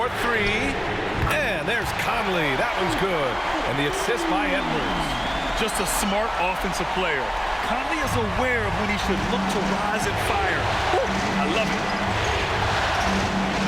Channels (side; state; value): both; identical; correlation 1.00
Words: And there's Conley. That one's good. And the assist by Edwards. Just a smart offensive player. Conley is aware of when he should look to rise and fire. Woo, I love it.